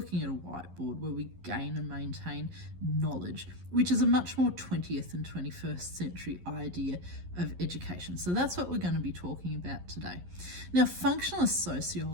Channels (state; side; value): late; left; 11 ms